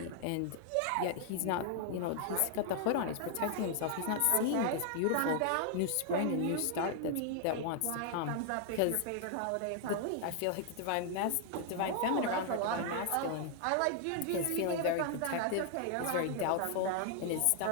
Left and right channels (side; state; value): both; different; correlation 0.00